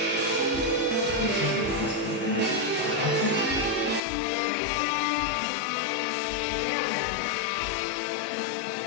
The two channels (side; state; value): right; drops out; at 4.0 s